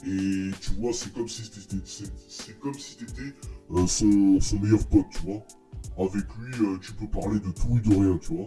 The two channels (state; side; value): identical; both; correlation 1.00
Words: et tu vois, c'est comme si t'étais son meilleur pote, tu vois. Avec lui, tu peux parler de tout et de rien, tu